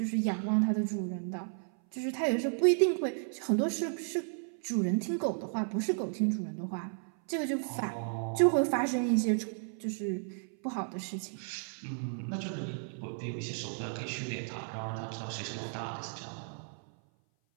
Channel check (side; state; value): left; silent; 55 dB below the other